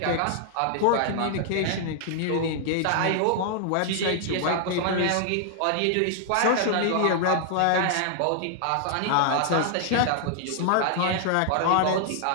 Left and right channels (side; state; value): both; different; correlation -0.01